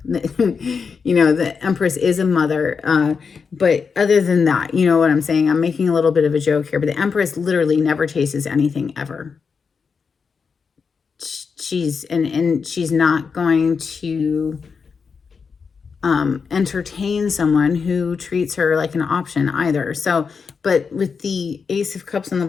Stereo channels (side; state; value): right; quieter; 5.6 dB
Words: The Empress is a mother. But other than that, you know what I'm saying? I'm making a little bit of a joke here, but the Empress literally never chases anything ever. She's not going to entertain someone who treats her like an option either. So, but with the Ace of Cups on the